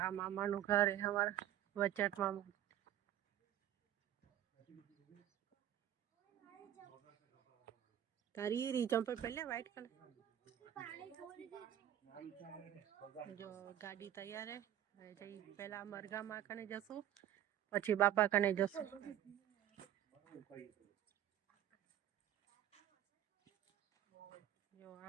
આ મામાનું ઘર હે અમારા વચટ મામા. તારી રી ચંપલ પહેલે વ્હાઈટ કલર. જો ગાડી તૈયાર હે. જઈ પહેલા મરઘામાં કને જશું, પછી બાપા કને જશું. જો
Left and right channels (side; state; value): left; quieter; 11.6 dB